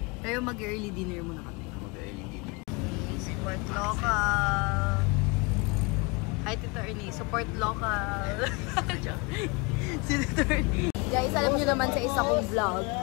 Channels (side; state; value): right; quieter; 28.5 dB